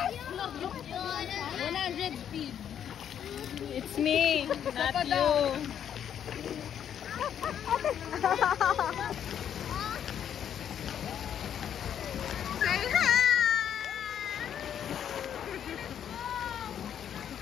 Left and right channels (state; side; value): quieter; right; 9.2 dB